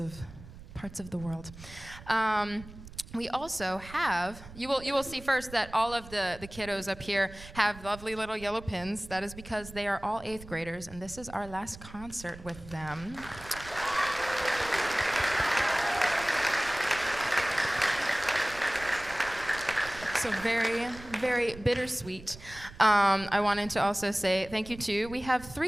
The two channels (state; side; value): noise; right; rumble, 16 dB below the sound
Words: the world. we also have, you will see first that all of the kiddos up here have lovely little yellow pins. That is because they are all 8th graders, and this is our last concert with them. So very, very bittersweet. I wanted to also say thank you to, we have